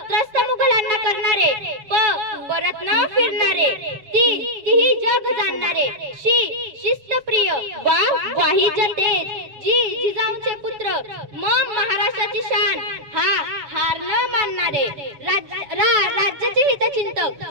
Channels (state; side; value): late; left; 7.3 ms